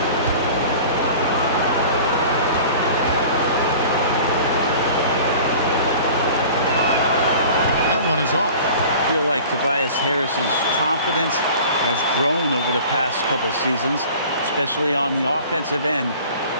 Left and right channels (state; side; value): inverted; both; correlation -0.43